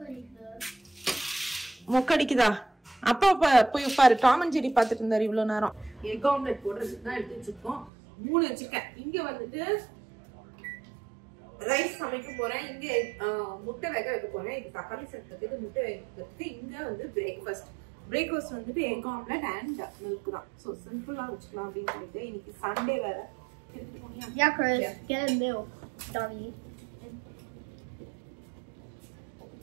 மொக்கடிக்குதா? அப்பா போய் பாரு, டாம் அண்ட் ஜெரி பார்த்துட்டு இருந்தாரு இவ்வளவு நேரம். எக் ஆம்லெட் போடுறதுக்கு தான் எடுத்து வச்சிருக்கோம். 3 வச்சிருக்கேன். இங்க வந்துட்டு ரைஸ் சமைக்க போறேன், இங்க முட்டை வேக வைக்க போறேன். இது தக்காளி சேர்த்துக்கு, முட்டை வைக்கிறதுக்கு. இங்க வந்து பிரேக்ஃபாஸ்ட் வந்துட்டு எக் ஆம்லெட் அண்ட் மில்க் தான். ஸோ சிம்பிளா வச்சுக்கலாம் அப்படின்னு சொல்லிட்டு. இன்னைக்கு சண்டே வேற. Yeah, Chris, get a milk, dummy.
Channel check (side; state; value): left; drops out; at 7.9 s